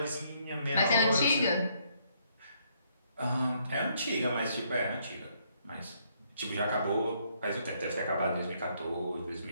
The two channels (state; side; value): inverted; both; correlation -0.70